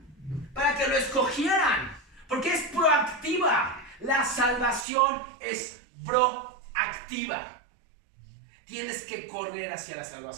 para que lo escogieran. Porque es proactiva. La salvación es proactiva. Tienes que correr hacia la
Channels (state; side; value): drops out; left; at 4.9 s